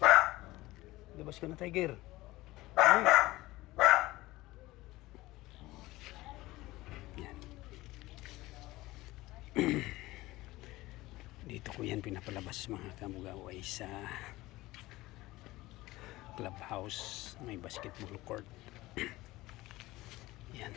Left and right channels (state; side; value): quieter; right; 18.7 dB